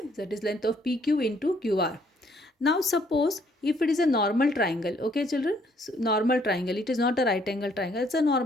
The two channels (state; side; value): normal; both; correlation 0.66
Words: that is length of PQ into QR. Now suppose if it is a normal triangle, okay children, so normal triangle, it is not a right angle triangle, it's a